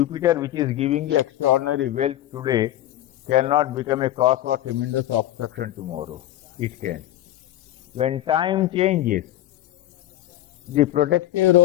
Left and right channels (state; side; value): quieter; right; 13.7 dB